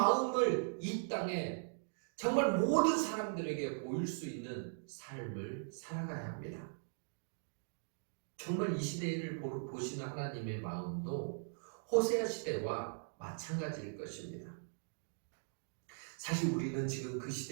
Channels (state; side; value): silent; left; digital silence